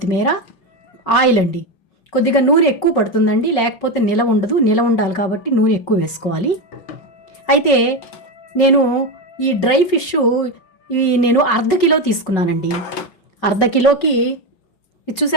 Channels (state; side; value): late; right; 5.4 ms